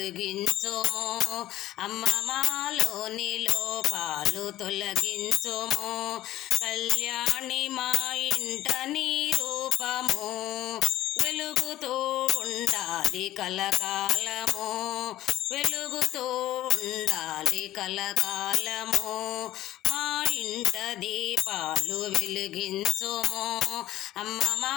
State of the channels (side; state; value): right; quieter; 14.6 dB